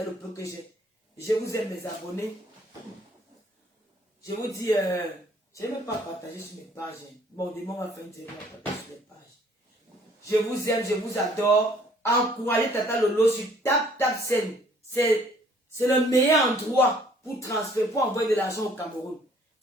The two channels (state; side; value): normal; both; correlation 0.59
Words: le peu que j'ai. Je vous aime, mes abonnés. Je vous dis, je n'ai même pas partagé sur mes pages. Bon, demain, on va faire une série partager sur les pages. Je vous aime, je vous adore. Encouragez Tata Lolo sur TapTapSend. C'est le meilleur endroit pour transférer, pour envoyer de l'argent au Cameroun.